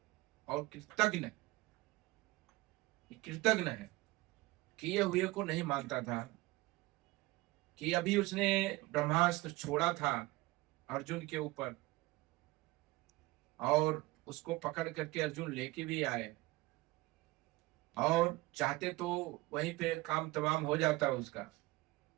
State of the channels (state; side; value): quieter; left; 20.8 dB